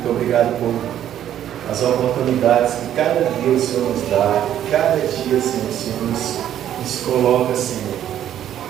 obrigado por as oportunidades que cada dia o Senhor nos dá. Cada dia, Senhor, o Senhor nos coloca, Senhor,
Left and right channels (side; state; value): left; quieter; 11.0 dB